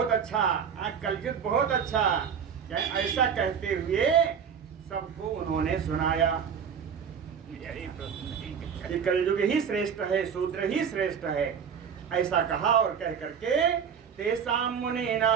अच्छा, कलयुग बहुत अच्छा। ऐसा कहते हुए सबको उन्होंने सुनाया। ये कलयुग ही श्रेष्ठ है, शूद्र ही श्रेष्ठ है, ऐसा कहा। और कह करके तेसाम मुनि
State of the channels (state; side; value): quieter; left; 7.2 dB